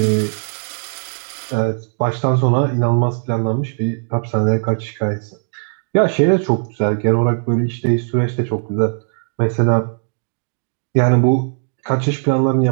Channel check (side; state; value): left; silent; 67 dB below the other